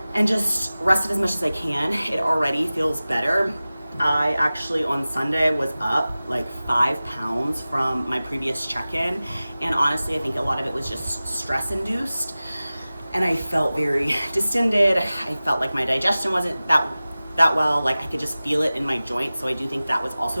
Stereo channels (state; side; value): inverted; both; correlation -0.97